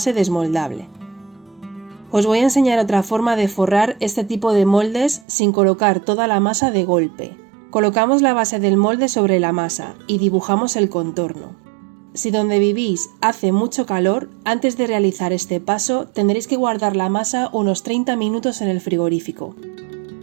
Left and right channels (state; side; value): drops out; left; at 5.2 s